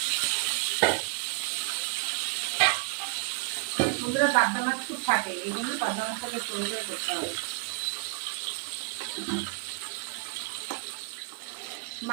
বন্ধুরা, পাবদা মাছ খুব ফাটে, এই জন্য পাবদা মাছটাকে পরিষ্কার করতে হবে।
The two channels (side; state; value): left; quieter; 32.6 dB